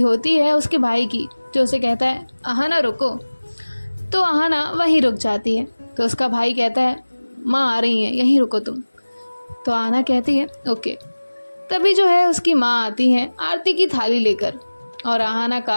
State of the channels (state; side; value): inverted; both; correlation -1.00